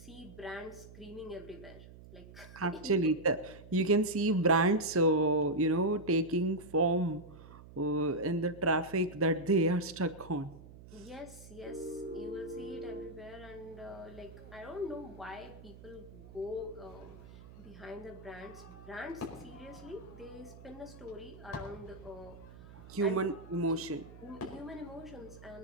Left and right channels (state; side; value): noise; right; hum, 17 dB below the sound